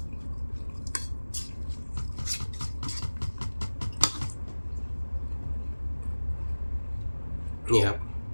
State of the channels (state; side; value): inverted; both; correlation -1.00